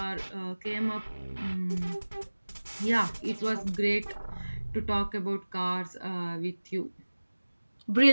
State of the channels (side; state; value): both; inverted; correlation -1.00